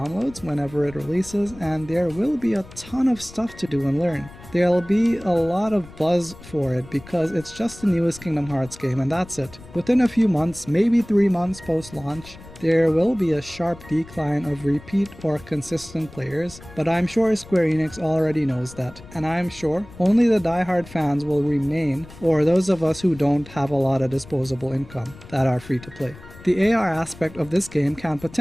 whenever it releases, and there will be a ton of stuff to do and learn. There'll be a lot of buzz for it because it's just the newest Kingdom Hearts game and that's it. Within a few months, maybe 3 months post-launch, there will be a sharp decline of repeat or consistent players, but I'm sure Square Enix already knows that, and I'm sure only the die-hard fans will remain, or those of us who don't have a lot of disposable income that are free to play. The AR aspect of this game can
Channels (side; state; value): left; noise; rumble, 19 dB below the sound